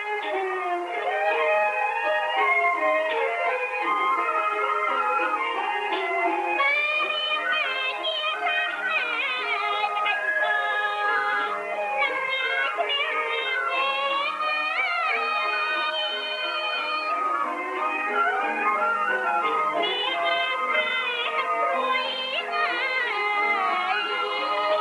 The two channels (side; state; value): both; identical; correlation 1.00